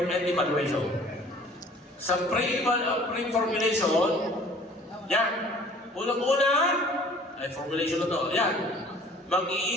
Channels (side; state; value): both; normal; correlation 0.51